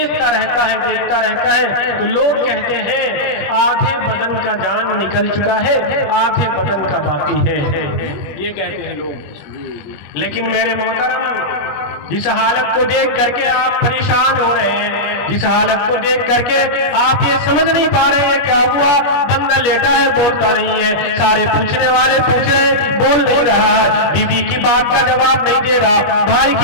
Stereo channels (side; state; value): right; late; 21 ms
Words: रहता है। तो लोग कहते हैं आधे बदन का जान निकल चुका है, आधे बदन का बाकी है, ये कहते हैं लोग। लेकिन मेरे मोहतरम, जिस हालत को देख करके आप परेशान हो रहे हैं, जिस हालत को देख करके आप ये समझ नहीं पा रहे हैं क्या हुआ, बंदा लेटा है बोलता नहीं है, सारे पूछने वाले पूछ रहे हैं बोल नहीं रहा, बीवी की बात का जवाब नहीं दे रहा, भाई